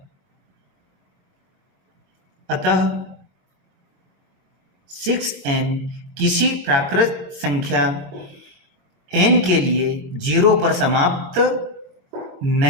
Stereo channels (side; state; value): left; late; 22 ms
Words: 6n किसी प्राकृत संख्या n के लिए 0 पर समाप्त